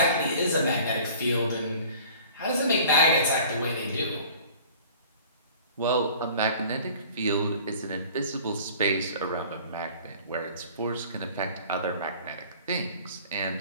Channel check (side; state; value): both; inverted; correlation -0.47